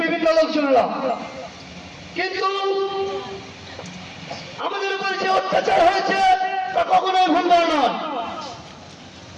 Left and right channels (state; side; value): identical; both; correlation 1.00